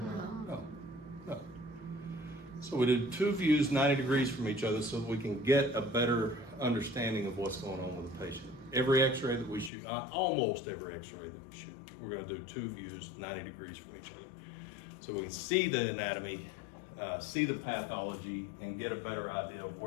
No. So we did 2 views 90 degrees from each other so that we can get a better understanding of what's going on with the patient. Every X-ray that we shoot, almost every X-ray that we shoot, we're going to do 2 views 90 degrees from each other. So we can see the anatomy, see the pathology, and get a better idea of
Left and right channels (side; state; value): right; drops out; at 9.7 s